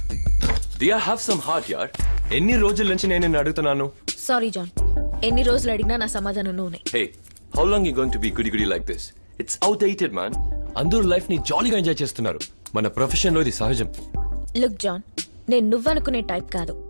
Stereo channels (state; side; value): inverted; both; correlation -1.00